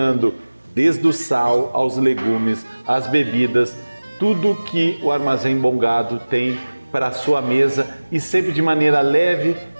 desde o sal aos legumes, as bebidas, tudo que o Armazém Bom Gado tem para a sua mesa e sempre de maneira leve,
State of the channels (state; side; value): inverted; both; correlation -1.00